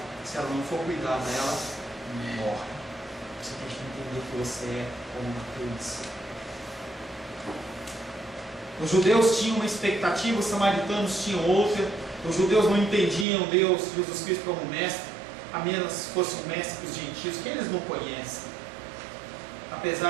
se ela não for cuidada, ela morre. Você tem que entender que você é como uma criança. Os judeus tinham uma expectativa, os samaritanos tinham outra. Os judeus não entendiam Deus, Jesus Cristo, como mestre, a menos fosse um mestre para os gentios, que eles não conhecem.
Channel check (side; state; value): left; drops out; at 13.2 s